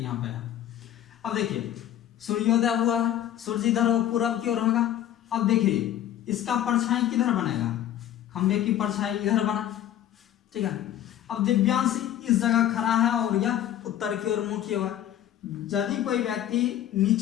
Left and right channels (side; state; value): right; quieter; 11.5 dB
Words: यहाँ पे है। अब देखिए सूर्योदय हुआ, सूर्य इधर पूरब की ओर होगा। अब देखिए इसका परछाई किधर बनेगा, खंभे की परछाई इधर बना, ठीक है। अब दिव्यांश इस जगह खड़ा है और यह उत्तर की ओर मुंह किया हुआ है। यदि कोई व्यक्ति